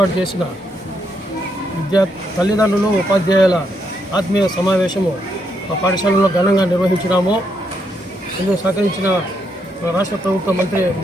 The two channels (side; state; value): both; normal; correlation 0.78